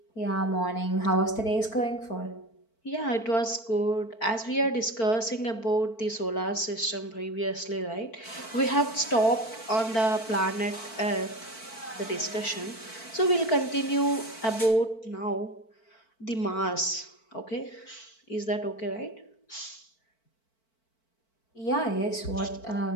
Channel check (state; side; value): late; right; 4.5 ms